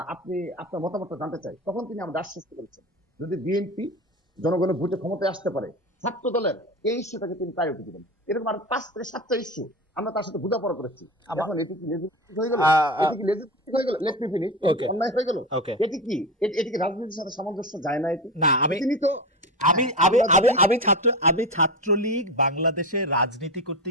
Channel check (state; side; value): normal; both; correlation 0.23